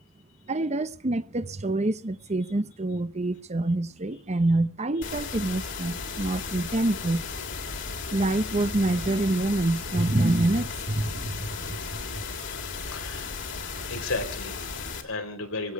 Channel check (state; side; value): normal; both; correlation 0.71